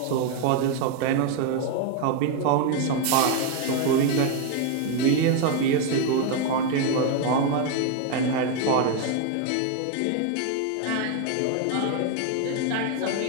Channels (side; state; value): both; different; correlation 0.01